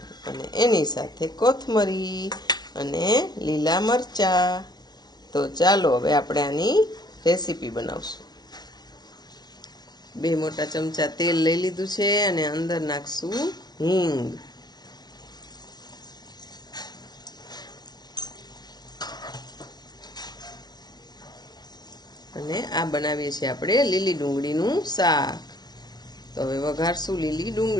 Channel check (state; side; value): late; right; 0.19 ms